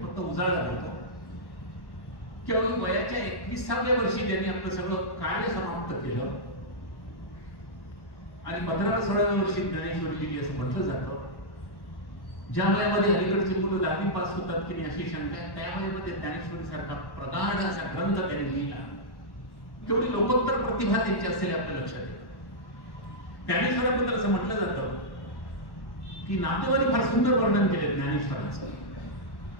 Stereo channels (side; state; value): right; late; 1.1 ms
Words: उजाळा होतो. केवळ वयाच्या 21व्या वर्षी त्यांनी आपलं सगळं कार्य समाप्त केलं आणि 15-16व्या वर्षी ज्ञानेश्वरी लिहिली असं म्हटलं जातं. ज्या वयामध्ये अलीकडची मुलं 10वी पास होतात की नाही अशी शंका आहे, त्या वयामध्ये ज्ञानेश्वरी सारखा प्रगाढ असा ग्रंथ त्यांनी लिहिला. केवढी लोकोत्तर प्रतिभा त्यांची असेल आपल्या लक्षात येतं. ज्ञानेश्वराबद्दल असं म्हटलं जातं की नातेवाईक फार सुंदर वर्णन केले ज्ञानेश्वरांचं,